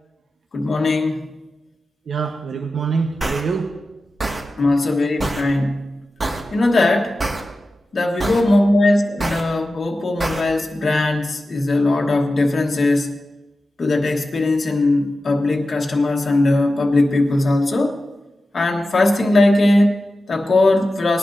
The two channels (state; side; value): normal; both; correlation 0.93